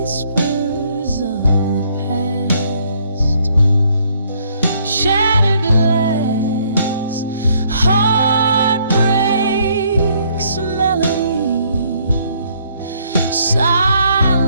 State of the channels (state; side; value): inverted; both; correlation -0.67